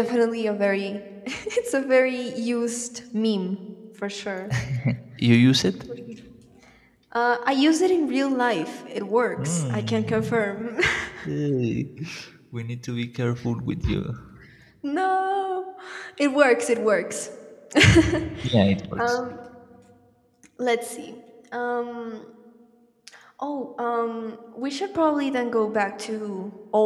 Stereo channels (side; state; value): both; identical; correlation 1.00